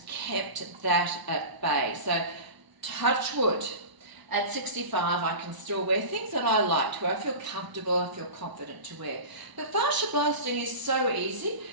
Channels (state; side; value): late; left; 1.0 ms